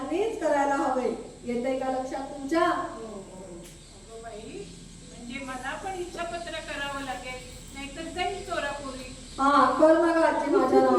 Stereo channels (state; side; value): identical; both; correlation 1.00